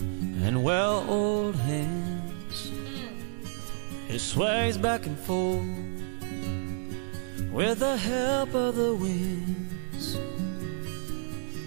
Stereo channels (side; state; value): left; silent; digital silence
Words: and well-oiled hands. It sways back and forth with the help of the winds.